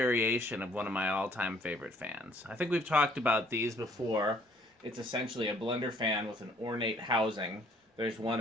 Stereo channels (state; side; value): normal; both; correlation 0.60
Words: of one of my all-time favorite fans. I think we've talked about these before. It's essentially a blender fan with an ornate housing. There's 1